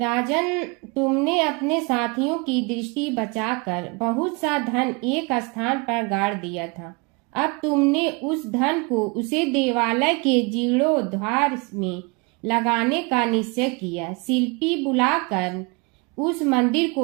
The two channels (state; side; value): quieter; left; 29.3 dB